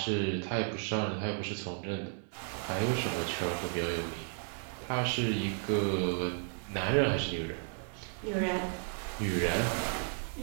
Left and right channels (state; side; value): silent; left; 55 dB below the other